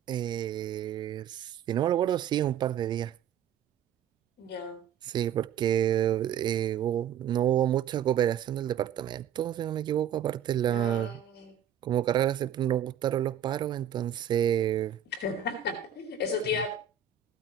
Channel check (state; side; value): quieter; left; 8.6 dB